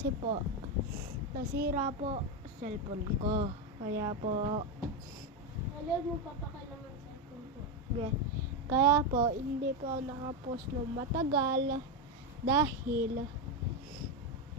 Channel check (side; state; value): both; normal; correlation 0.09